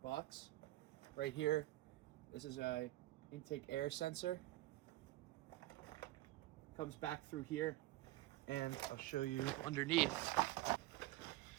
box. Right here, this is a intake air sensor. Comes back through here. And I'll show you underneath.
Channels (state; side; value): quieter; left; 17.5 dB